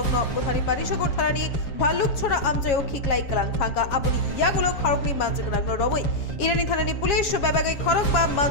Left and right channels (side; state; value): right; late; 7.3 ms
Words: বুথানি পানিসাগর থানানি ভাল্লুক ছড়া আমচাইও খিকলাই কালাং থাকা আমনি ইয়াগুলো খড়গনি মাঝগানাগ্ন রমই ইরানি থানানি পুলিশ বেবাগে খড়গবা